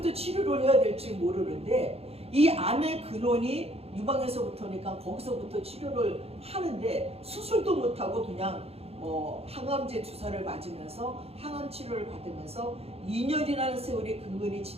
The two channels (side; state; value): left; late; 0.29 ms